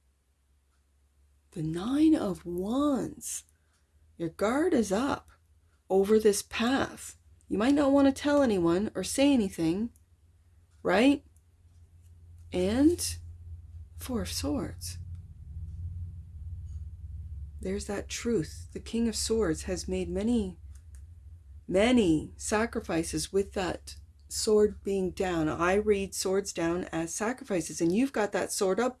The Nine of Wands. Your guard is up over this path. You might not want to tell anyone or say anything, right? And Four of Swords. There's that truth. The King of Swords has made many, many sacrifices with that sword being down. I read swords down as sacrifices, and you've got that sword up,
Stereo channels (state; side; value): identical; both; correlation 1.00